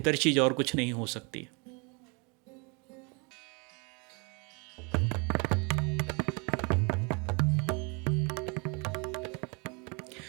चीज़ और कुछ नहीं हो सकती।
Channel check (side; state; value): left; quieter; 32.1 dB